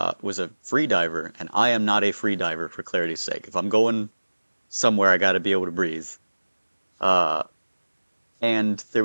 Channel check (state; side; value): inverted; both; correlation -1.00